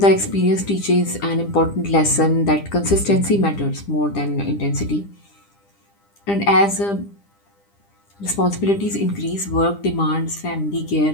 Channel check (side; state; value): right; late; 10 ms